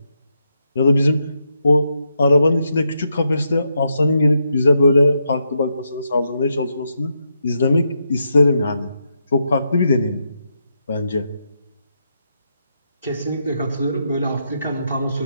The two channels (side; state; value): both; inverted; correlation -0.82